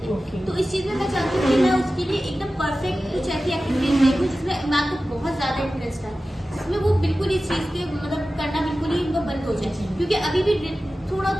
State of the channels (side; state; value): both; normal; correlation 0.95